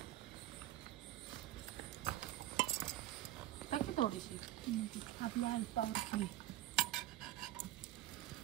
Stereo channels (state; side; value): quieter; left; 14.5 dB